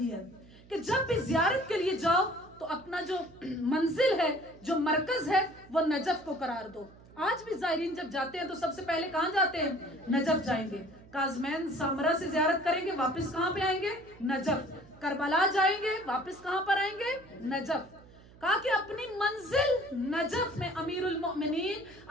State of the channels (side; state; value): right; noise; hum, 23 dB below the sound